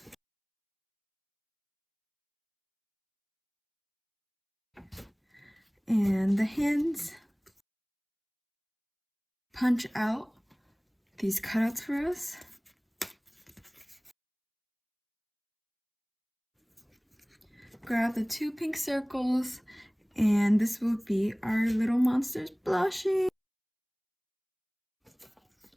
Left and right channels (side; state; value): both; identical; correlation 1.00